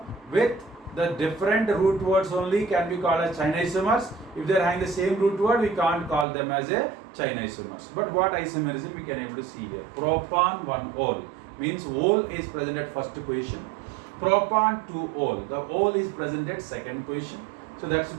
with the different root words only can be called as China isomers. If they are having the same root word, we can't call them as a China isomers. But what isomerism we can able to see here? Propan 1-ol means ol is present at first position. Propan 2-ol, the ol is present at second position. So that's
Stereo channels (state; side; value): drops out; left; at 6.2 s